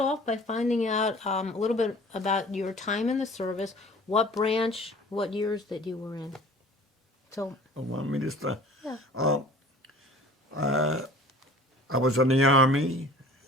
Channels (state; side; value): normal; both; correlation 0.47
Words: by finding out a little bit about your time in the service, what branch, what years that you were in. So, I want me to start. Yeah. I was in the Army,